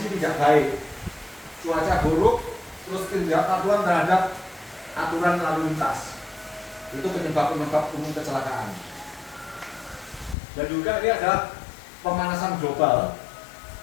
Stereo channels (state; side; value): drops out; right; at 10.4 s